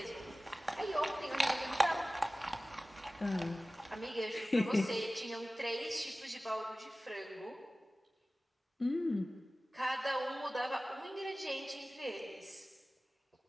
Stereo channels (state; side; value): normal; both; correlation 0.97